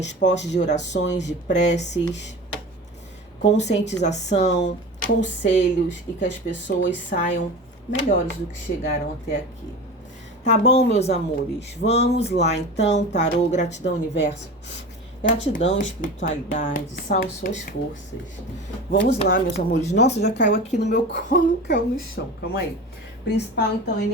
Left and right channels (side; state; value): both; normal; correlation 0.32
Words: de orações, de preces, conscientização, conselhos e que as pessoas saiam melhores do que chegaram até aqui. Tá bom, meus amores? Vamos lá, então. Tarô, gratidão, universo. Gratidão, espiritualidade, salve suas forças. Vamos lá, meus amores. Nossa, já caiu aqui no meu colo, caiu no chão. Calma aí. Principal, então,